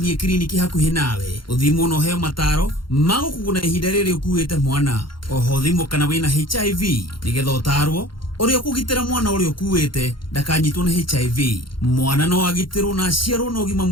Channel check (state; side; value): late; right; 0.73 ms